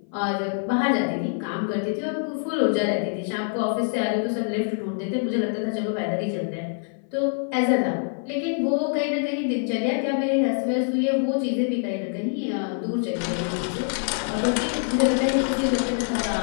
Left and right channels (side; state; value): right; silent; 56 dB below the other